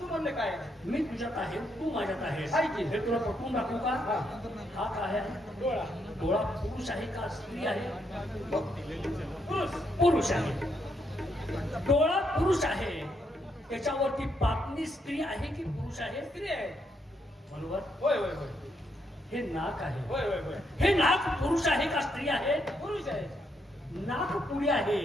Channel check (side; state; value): both; normal; correlation 0.77